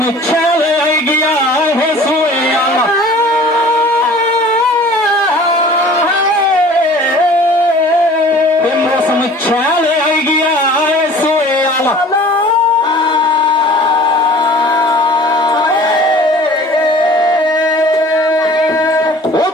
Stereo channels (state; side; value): normal; both; correlation 0.47